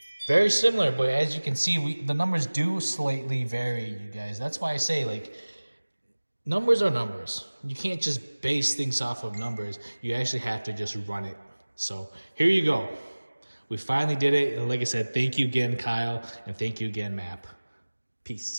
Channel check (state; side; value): inverted; both; correlation -1.00